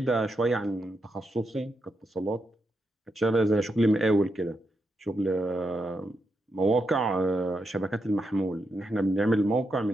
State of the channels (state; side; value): normal; both; correlation 0.84